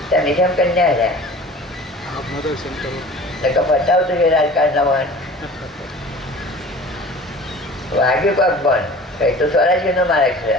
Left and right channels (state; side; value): normal; both; correlation 0.42